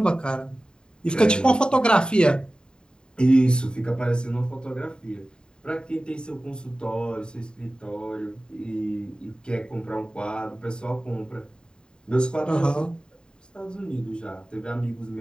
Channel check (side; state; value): right; late; 0.049 ms